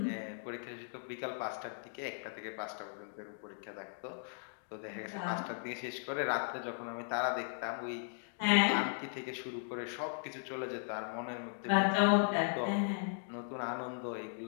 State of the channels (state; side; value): silent; right; digital silence